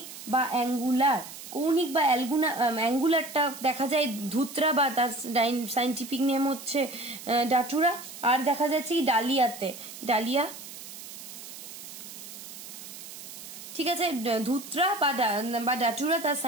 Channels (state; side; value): noise; right; hiss, 13 dB below the sound